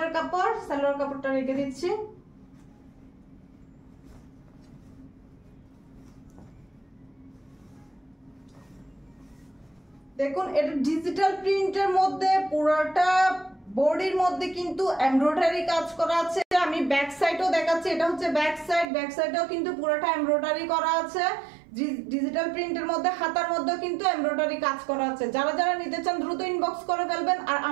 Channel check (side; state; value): left; drops out; at 18.9 s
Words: কাপড়, সালোয়ার কাপড়টা রেখে দিচ্ছি। দেখুন এটা ডিজিটাল প্রিন্টের মধ্যে, পুরোটা বডির মধ্যে কিন্তু এমব্রয়ডারি কাজ করা আছে। আমি ব্যাক সাইডও দেখাচ্ছি, এটা হচ্ছে ব্যাক সাইড, ব্যাক সাইডেও কিন্তু পুরোটা এমব্রয়ডারি করা আছে। ডিজিটাল প্রিন্টের মধ্যে হাতার মধ্যে কিন্তু এমব্রয়ডারি কাজ করা আছে। যারা যারা নিতে চান দ্রুত ইনবক্স করে ফেলবেন। আর